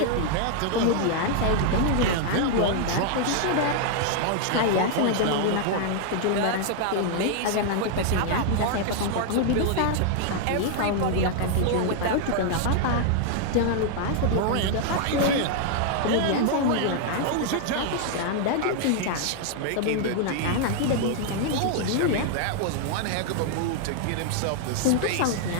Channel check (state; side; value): different; both; correlation 0.00